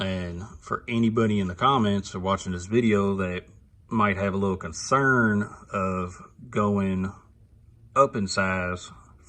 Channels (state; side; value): identical; both; correlation 1.00